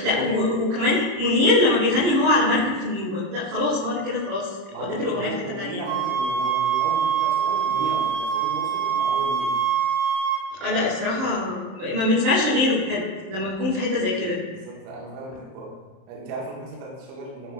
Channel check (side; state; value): left; late; 31 ms